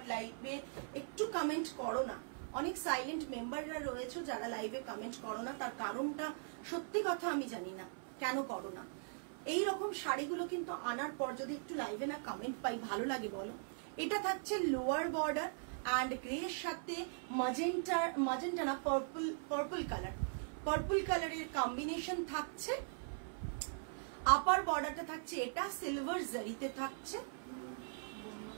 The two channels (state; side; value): silent; left; 51 dB below the other